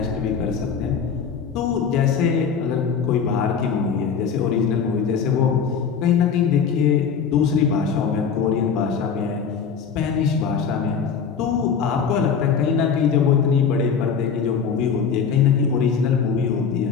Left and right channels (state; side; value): quieter; right; 6.5 dB